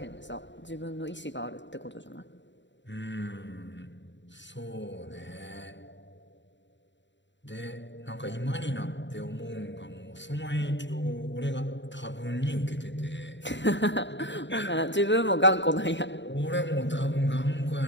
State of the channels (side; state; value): right; late; 0.53 ms